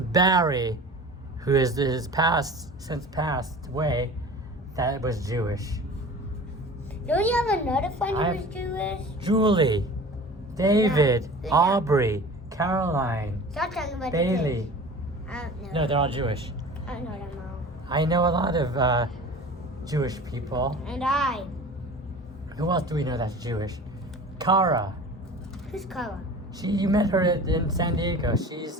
who is since passed away, that was Jewish. Don't you have another friend who was Jewish? Julie, David, Yeah. Aubrey, Caroline, Stop talking about Bailey. the kids. I don't know. No, they're all Jewish. I don't know them all. I know a lot of Jewish people. And I. Who else do we know that's Jewish? Kara. Who's Kara? You met her in San Diego.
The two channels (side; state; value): both; normal; correlation 0.39